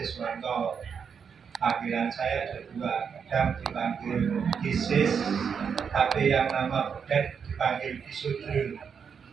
Wanto. Panggilan saya ada dua, kadang dipanggil Kisis, tapi yang nama Budet dipanggil Kisudrun.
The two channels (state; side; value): quieter; left; 6.6 dB